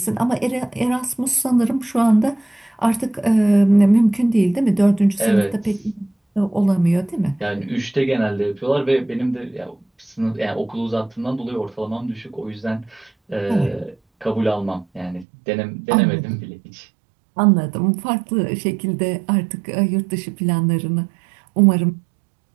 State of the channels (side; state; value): left; drops out; at 15.2 s